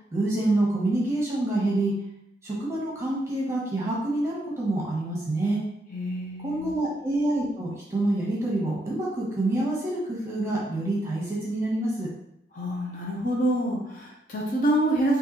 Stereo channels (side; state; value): both; normal; correlation 0.77